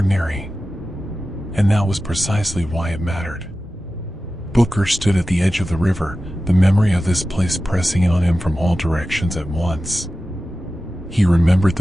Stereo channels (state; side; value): normal; both; correlation 0.94